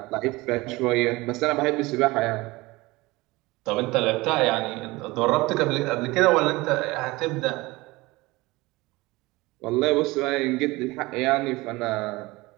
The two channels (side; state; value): left; quieter; 21.5 dB